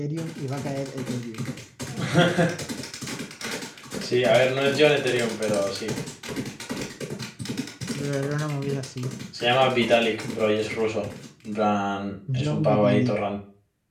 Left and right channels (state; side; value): identical; both; correlation 1.00